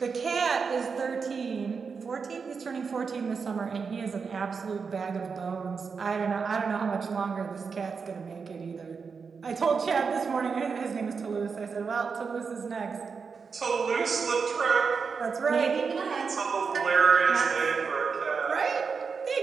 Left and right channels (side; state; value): left; quieter; 5.4 dB